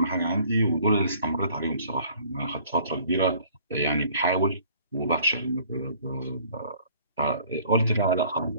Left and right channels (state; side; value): inverted; both; correlation -0.56